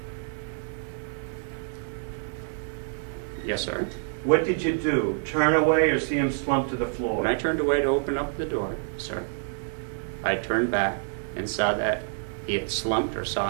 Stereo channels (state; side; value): silent; left; digital silence